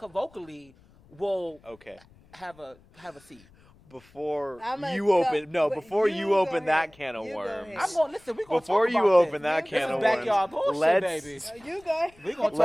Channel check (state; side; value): noise; left; rumble, 28 dB below the sound